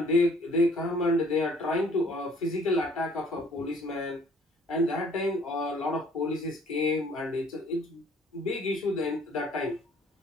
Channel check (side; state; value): both; normal; correlation 0.58